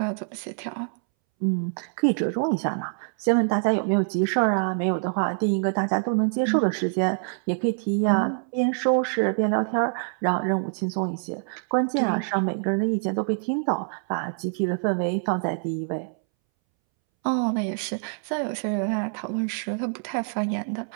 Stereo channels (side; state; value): left; silent; 61 dB below the other